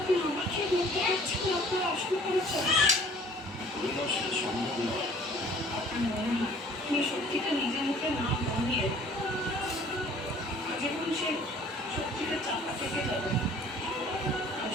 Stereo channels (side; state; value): both; normal; correlation 0.53